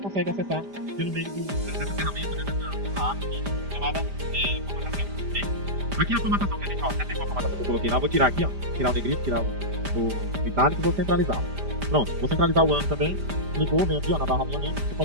acessar pelo meio dessa ferramenta, né, dessa app chamada formatação. Okay? Aqui é a formatação que a gente, ó, até tem uma formatação que eu coloquei lá, eu vou tirar aqui, ó, tirar o negrito, tirar o itálico e vou centralizar. Pronto, vou centralizar o ano também. Clicou, vem aqui, ó, na barra alinhamento, você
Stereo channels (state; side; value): late; left; 5.0 ms